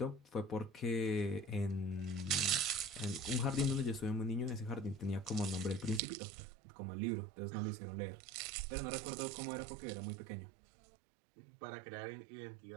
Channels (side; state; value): left; drops out; at 6.0 s